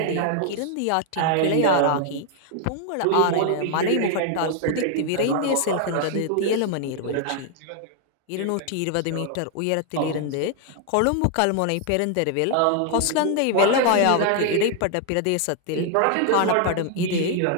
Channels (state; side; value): different; both; correlation 0.00